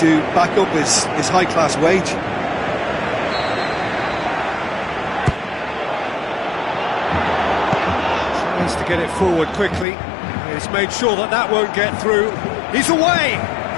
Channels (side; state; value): right; drops out; at 9.9 s